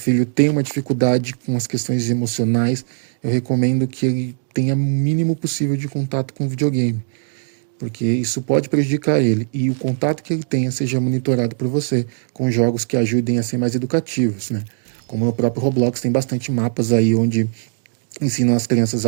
tem uma dificuldade com as questões emocionais, eu recomendo que ele tenha o mínimo possível de contato com o videogame, porque isso pode prejudicar ele e o contato que ele tenha seja monitorado por você com jogos que ajudem a ser mais educativos, né? Como o próprio Roblox tem bastante mapas aí onde ensinam as crianças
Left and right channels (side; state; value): left; silent; digital silence